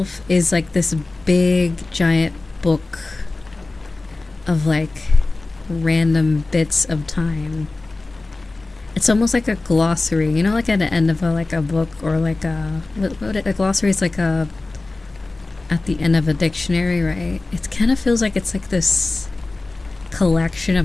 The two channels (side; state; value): right; quieter; 3.2 dB